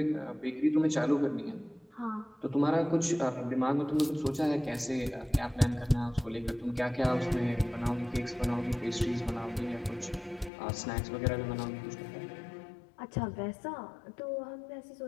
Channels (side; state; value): right; drops out; at 10.5 s